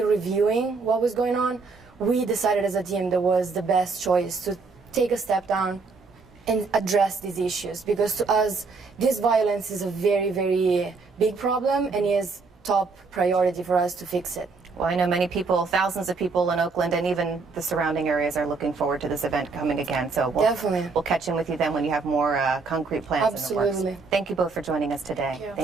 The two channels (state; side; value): quieter; left; 4.3 dB